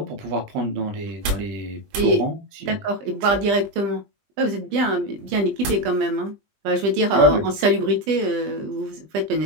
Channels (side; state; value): left; late; 20 ms